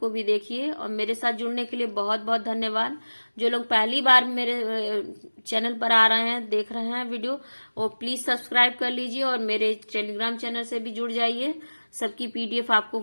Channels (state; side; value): inverted; both; correlation -1.00